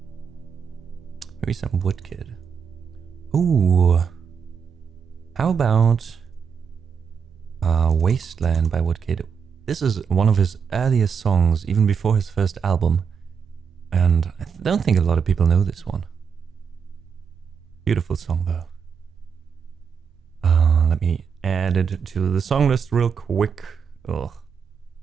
Maybe some Woodkid. Ooh. How about Wasteland by Woodkid? This is one of his earliest songs, even before his first album. And I don't think a lot of people know this one. Beautiful song though. Let me add it to the song list real quick. Ugh.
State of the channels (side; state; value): left; quieter; 6.6 dB